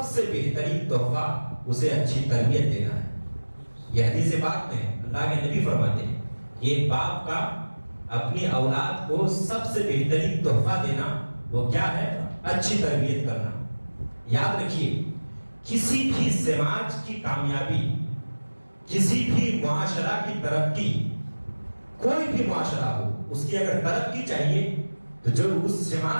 سے بہترین تحفہ اسے اچھی تربیت دینا ہے۔ یہ حدیث پاک میں اللہ کے نبی فرماتے ہیں کہ ایک باپ کا اپنی اولاد کو سب سے بہترین تحفہ دینا وہ کیا ہے؟ اچھی تربیت کرنا۔ یاد رکھیے، کسی بھی سماج کی کامیابی، کسی بھی معاشرہ کی ترقی، کوئی بھی معاشرہ ہو، اس کی اگر ترقی چاہیے تو جو اس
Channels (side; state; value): both; inverted; correlation -1.00